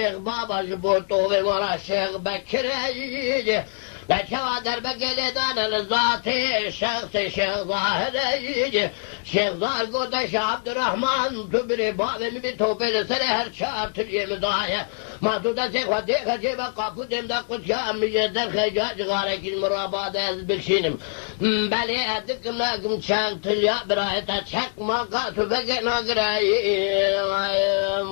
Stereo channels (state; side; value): silent; right; digital silence